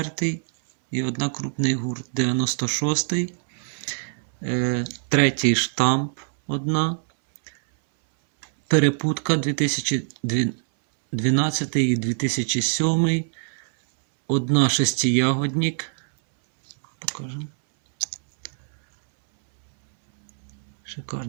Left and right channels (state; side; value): silent; left; 63 dB below the other